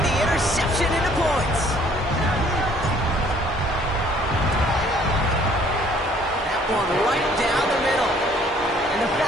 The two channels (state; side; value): normal; both; correlation 0.59